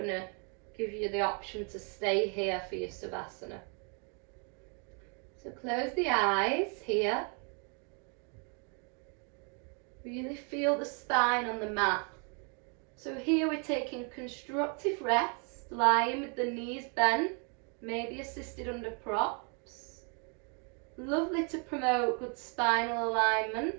to give you the option to stay here for your Savasana. So close the eyes here. Really feel the spine on the mat. So here we're taking constructive rest, lying with the knees bent, maybe assisted under props. Lovely to promote good spinal alignment.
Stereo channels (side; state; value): left; quieter; 38.3 dB